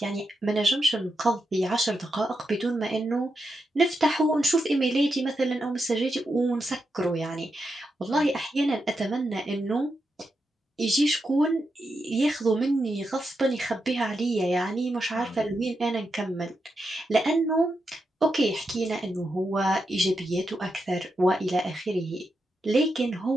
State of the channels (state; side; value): normal; both; correlation 0.86